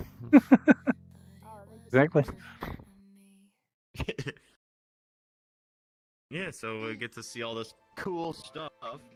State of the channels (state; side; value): identical; both; correlation 1.00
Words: Exactly. Yeah, so we get to see all this cool stuff,